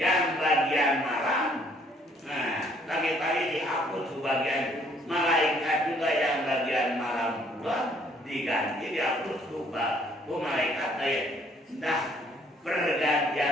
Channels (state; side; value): normal; both; correlation 0.63